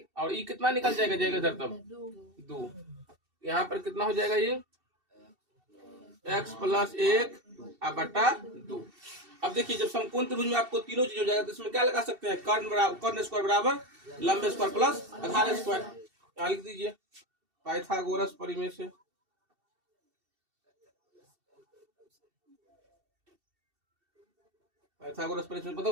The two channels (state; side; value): late; left; 2.7 ms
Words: और ये कितना निकल जाएगा इधर तब 2। यहाँ पर कितना हो जाएगा ये x प्लस 1 बटा 2। अब देखिए जब समकोण त्रिभुज में आपको तीनों चीज हो जाएगा तो इसमें क्या लगा सकते हैं, कर्ण स्क्वायर बराबर लंबे स्क्वायर प्लस आधार स्क्वायर। यहाँ लिख दीजिए पाइथागोरस परिमेय से। पाइथागोरस परिमेय से